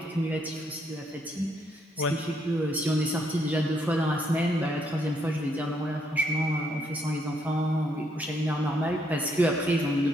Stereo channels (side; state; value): both; normal; correlation 0.73